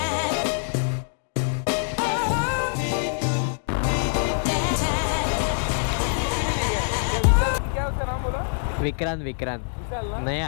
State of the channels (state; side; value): silent; right; digital silence